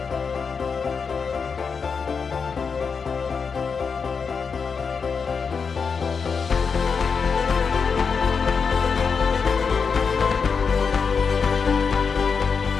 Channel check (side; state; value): right; quieter; 5.6 dB